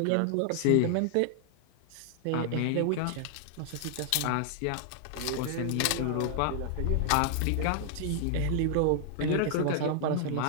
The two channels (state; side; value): different; both; correlation -0.01